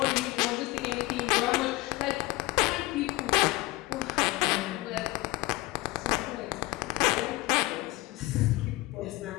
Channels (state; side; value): quieter; right; 20.5 dB